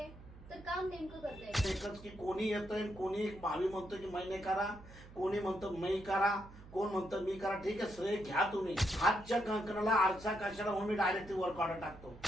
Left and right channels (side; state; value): right; noise; hum, 18 dB below the sound